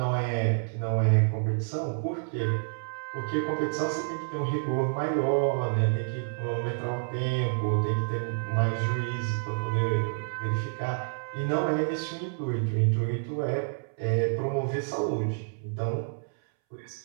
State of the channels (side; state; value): left; silent; 59 dB below the other